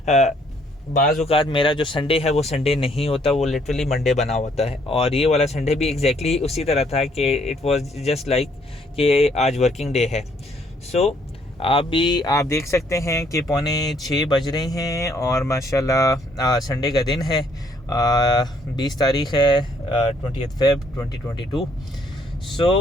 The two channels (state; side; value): normal; both; correlation 0.66